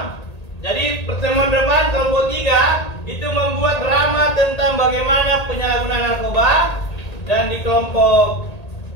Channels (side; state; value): right; late; 1.8 ms